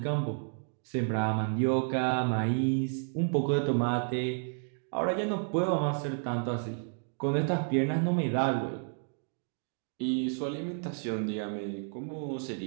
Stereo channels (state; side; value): silent; left; 57 dB below the other